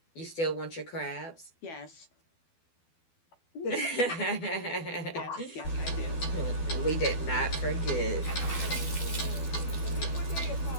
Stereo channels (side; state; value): right; late; 12 ms